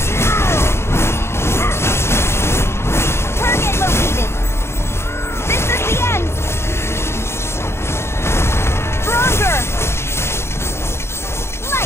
Target located! This is the end! Stronger!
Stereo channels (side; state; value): right; late; 0.12 ms